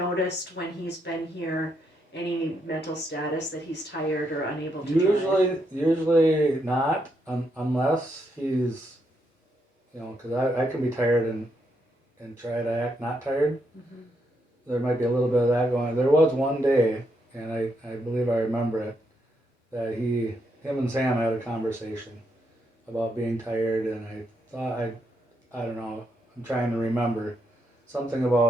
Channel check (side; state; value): both; normal; correlation 0.79